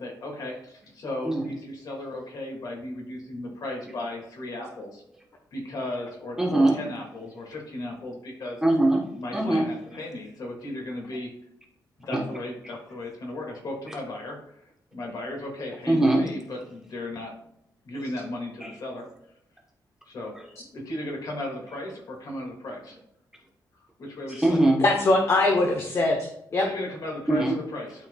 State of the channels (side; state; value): both; normal; correlation 0.81